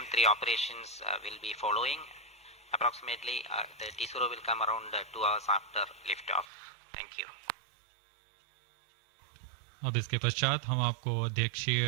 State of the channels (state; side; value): drops out; left; at 6.5 s